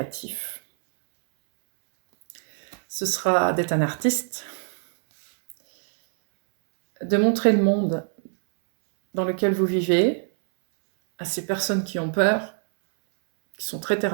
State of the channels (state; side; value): silent; left; 61 dB below the other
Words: Ce sera d'être un artiste, de montrer le monde dans lequel vous vivez à ces personnes qui ont peur, qui sont très terre